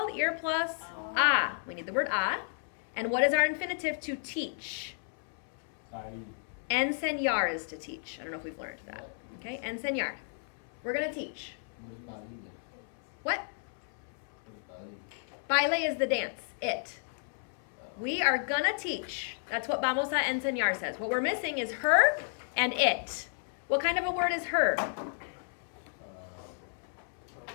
Ir plus a. We need the word a. And what is our infinitive to teach? Enseñar is to teach. I don't know if we've learned that. Okay, enseñar. We're going to teach. What? Baile is the dance. It. We are going to teach. That's what vamos a enseñar says. What we're missing is her and it. What kind of a word is her?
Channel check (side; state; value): right; silent; 56 dB below the other